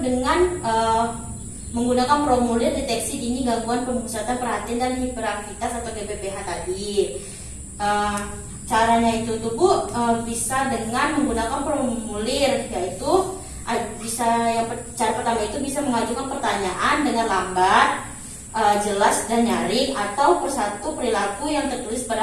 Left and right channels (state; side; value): identical; both; correlation 1.00